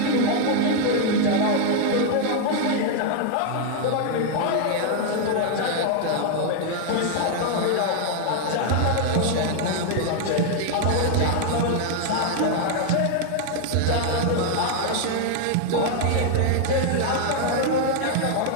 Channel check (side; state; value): both; different; correlation 0.00